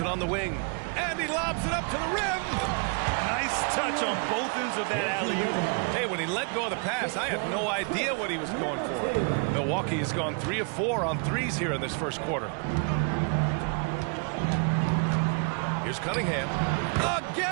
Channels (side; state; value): left; quieter; 38.1 dB